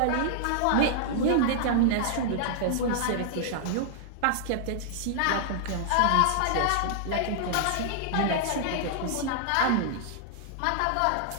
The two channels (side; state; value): both; different; correlation -0.01